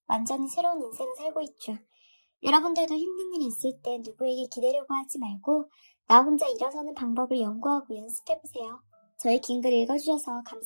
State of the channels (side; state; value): both; inverted; correlation -1.00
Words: 완전히 새로운 인생을 살고 있죠. 여러분들도 힘든 일이 있을 때 누구에게 기대려고 하지 말고 나 혼자 일어서는 방법을 연구하고 연습해보세요. 저희 긴 글 읽어주셔서